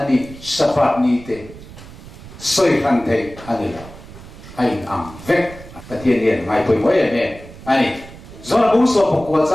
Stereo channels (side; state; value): right; noise; rumble, 17 dB below the sound